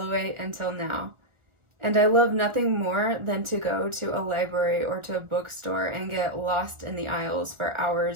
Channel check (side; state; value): left; late; 1.4 ms